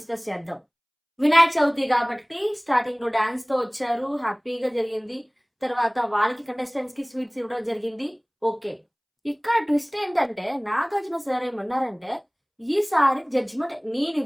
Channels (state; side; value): identical; both; correlation 1.00